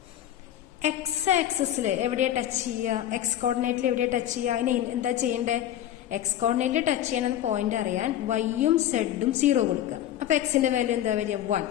എക്സ് ആക്സിസിൽ എവിടെയാണ് ടച്ച് ചെയ്യുക? എക്സ് കോർഡിനേറ്റിൽ എവിടെയാണ് ടച്ച് ചെയ്യുക? അതിന് എന്താ ചെയ്യേണ്ടത്? എക്സ് കോർഡിനേറ്റിൽ ടച്ച് ചെയ്യാനെന്ന് പോയിന്റ് അറിയാൻ വൈയും സെഡും 0 കൊടുക്കുക. അപ്പൊ എക്സിന്റെ വാല്യൂ എന്താ വരിക? 1.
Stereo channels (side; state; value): right; quieter; 11.8 dB